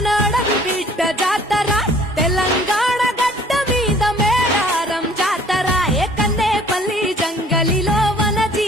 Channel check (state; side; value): normal; both; correlation 0.54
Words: నడవి బిడ్డ జాతర తెలంగాణ గడ్డ మీద మేడారం జాతర ఏ కన్నేపల్లి జంగలిలో వన